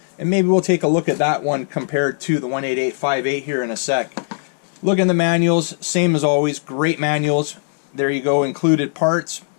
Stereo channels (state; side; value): silent; right; digital silence